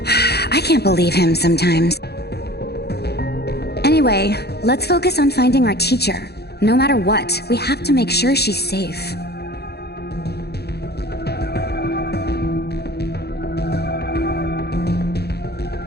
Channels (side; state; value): right; late; 0.48 ms